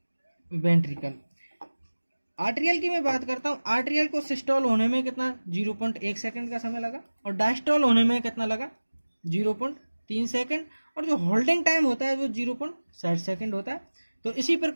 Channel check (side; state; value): both; inverted; correlation -1.00